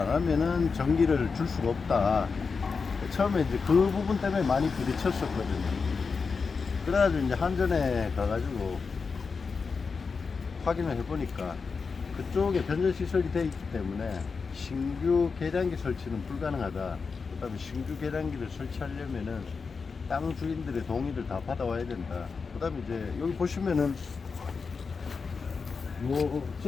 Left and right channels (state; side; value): quieter; right; 5.0 dB